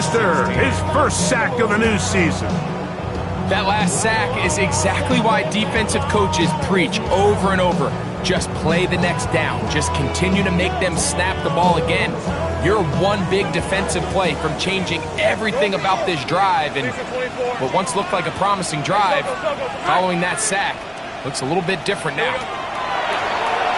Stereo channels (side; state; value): both; identical; correlation 1.00